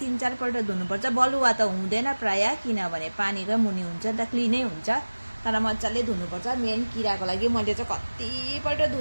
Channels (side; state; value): both; inverted; correlation -1.00